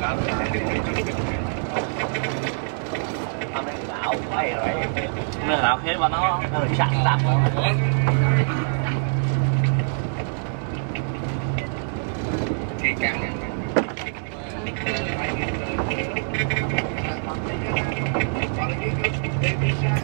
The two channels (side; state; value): left; silent; 60 dB below the other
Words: Mày lão hết mà nó chặn tạm